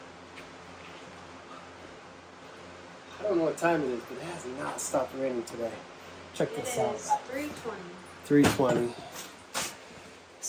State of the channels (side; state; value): both; identical; correlation 1.00